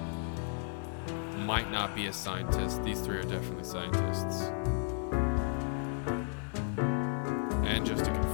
Might not be a scientist. These three are definitely scientists. And just to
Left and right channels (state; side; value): silent; right; 55 dB below the other